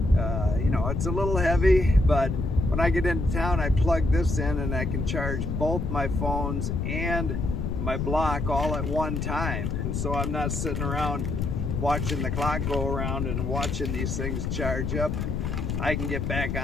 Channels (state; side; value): noise; left; rumble, 1 dB below the sound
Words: It's a little heavy, but when I get into town, I plug this in and I can charge both my phones and my block all at one time. And so I'm not sitting around watching the clock go around and watching these things charge up. I can get back